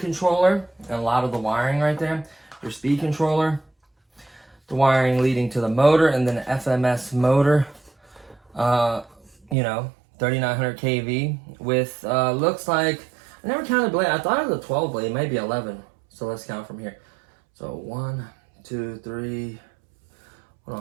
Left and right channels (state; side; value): drops out; left; at 9.6 s